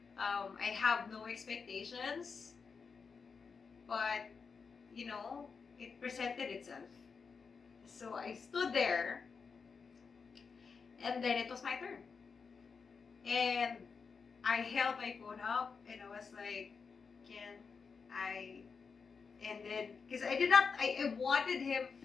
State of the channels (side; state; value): right; quieter; 5.4 dB